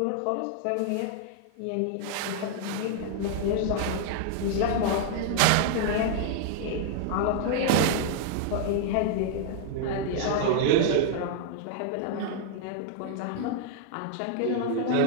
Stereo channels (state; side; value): different; both; correlation -0.01